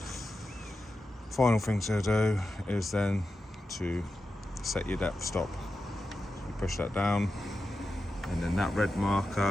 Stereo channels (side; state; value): both; normal; correlation 0.90